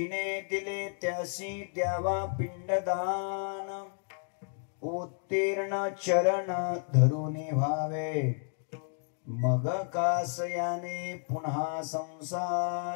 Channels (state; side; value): silent; right; 56 dB below the other